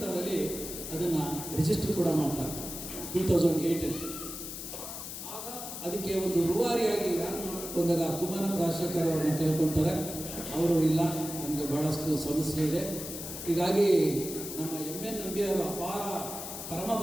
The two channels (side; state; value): left; noise; hiss, 8 dB below the sound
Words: ಅದನ್ನು ರಿಜಿಸ್ಟರ್ ಕೂಡ ಮಾಡ್ತಾರೆ 2008. ಆಗ ಅದಕ್ಕೆ ಒಂದು ರೂವಾರಿಯಾಗಿ ಯಾರು ಮಾಡಬೇಕು ಅಂದಾಗ ಕುಮಾರನ್ ರಾಜಶೇಖರ್ ಅವ್ರನ್ನ ಕೇಳ್ಕೊಳ್ತಾರೆ. ಅವರು ಇಲ್ಲ, ನಮಗೆ ಭಾಳಷ್ಟು ಸಮಸ್ಯೆ ಇದೆ, ಹೀಗಾಗಿ ನಮ್ಮ MN ನಂಬಿಯವರು ಅಪಾರ